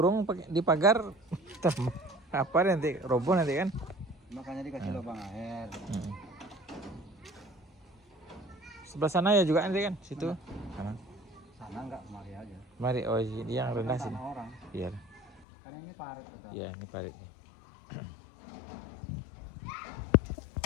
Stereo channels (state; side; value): drops out; right; at 15.5 s